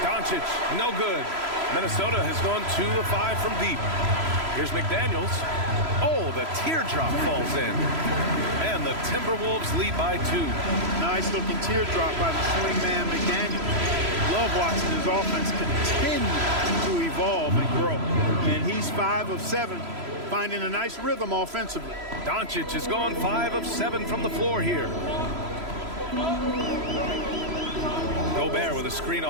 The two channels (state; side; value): late; left; 3.0 ms